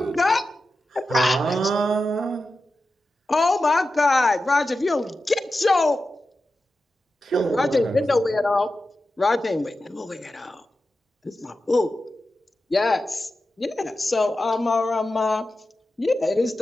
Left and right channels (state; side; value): normal; both; correlation 0.92